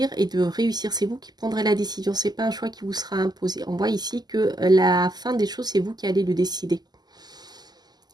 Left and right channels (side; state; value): left; late; 0.20 ms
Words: et de réussir. C'est vous qui prendrez la décision. Ce n'est pas un choix qui vous sera imposé. On voit ici que la fin des choses, c'est vous qui allez le décider.